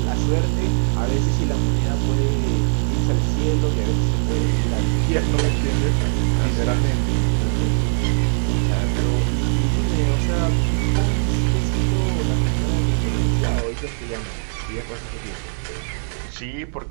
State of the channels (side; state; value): left; silent; digital silence